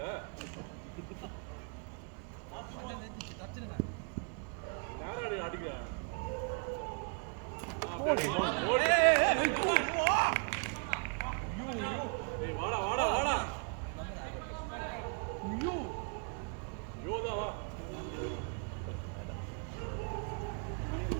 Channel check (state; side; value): quieter; left; 39.2 dB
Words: நேரா அடிக்க ஏய் வாடா வாடா வாடா யோதா வா